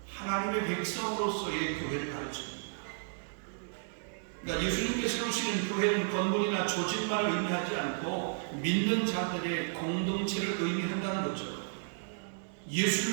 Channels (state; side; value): silent; left; digital silence